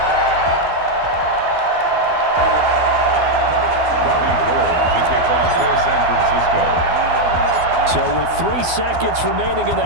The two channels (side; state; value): left; late; 12 ms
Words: Robbie Gould to kick off for San Francisco. So with 3 seconds remaining in the